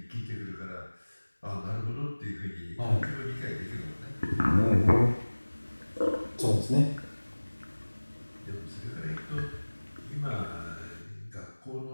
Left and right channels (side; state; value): both; inverted; correlation -1.00